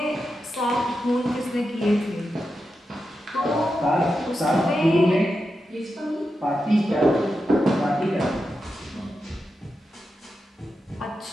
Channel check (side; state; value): both; normal; correlation 0.89